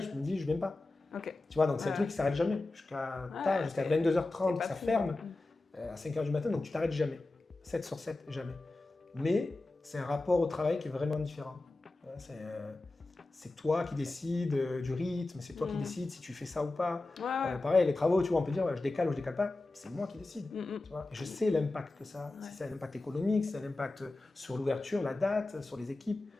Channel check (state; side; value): quieter; right; 3.1 dB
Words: je me dis, je viens pas. Okay. Tu vois, donc c'est un truc qui s'arrête jamais. Jusqu'à 22h30, ça ferme. À 5h du matin, donc tu t'arrêtes jamais. 7 sur 7, jamais. Mais c'est un rapport au travail qui est vraiment différent. C'est toi qui décides du rythme, c'est toi qui décides si tu fais ça ou pas. Pareil, les travaux, tu vois, on peut dire je décale ou je décale pas, c'est moi qui décide. Tu vois. Et je sais l'impact que ça a. Si ça a un impact économique, si ça a un impact sur l'ouverture, la date, sur les équipes.